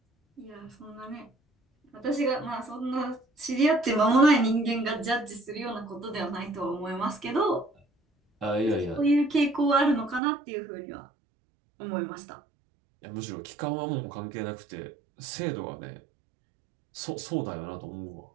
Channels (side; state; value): left; drops out; at 10.2 s